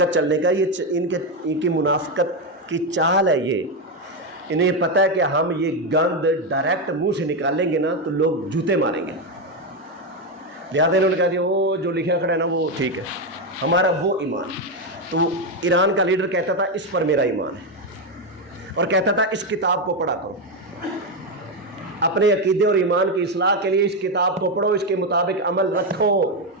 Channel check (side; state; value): both; normal; correlation 0.08